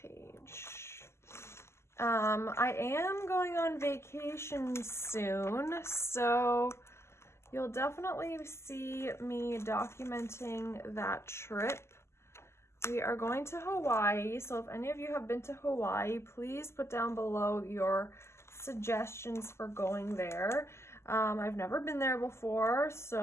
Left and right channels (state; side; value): late; right; 0.13 ms